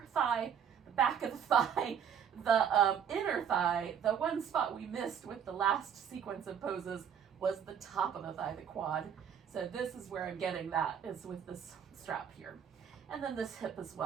thigh, the back of the thigh, the inner thigh. The one spot we missed with the last sequence of poses was the top of the thigh, the quad. So this is where I'm getting that, is with this strap here. And then this hip as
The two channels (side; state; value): left; quieter; 8.1 dB